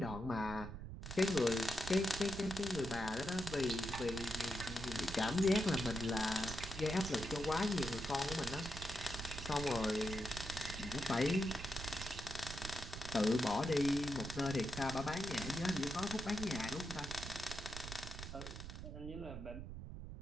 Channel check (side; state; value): right; noise; rumble, 9 dB below the sound